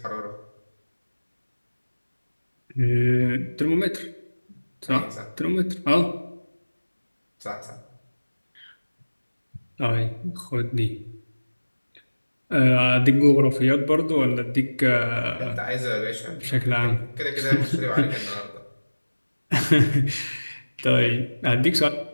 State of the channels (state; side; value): inverted; both; correlation -1.00